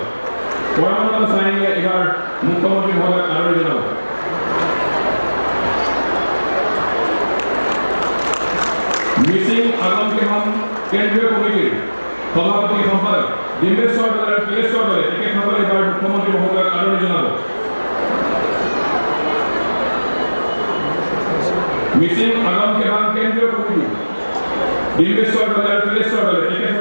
পৰমানন্দ চাইনিয়ে এইবাৰ মুখ্যমন্ত্ৰী মহোদয়ক আদৰণি জনাব। মিচিং আগম কেহম কেন্দ্ৰীয় কমিটিৰ সভাপতি সম্পাদক ডিম্বেশ্বৰ দলে আৰু তিলেশ্বৰ দলে তেখেতসকলে এইবাৰ মুখ্যমন্ত্ৰী মহোদয়ক আদৰণি জনাব। মিচিং আগম কেহম কেন্দ্ৰীয় কমিটি ডিম্বেশ্বৰ দলে আৰু তিলেশ্বৰ দলে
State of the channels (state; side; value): inverted; both; correlation -1.00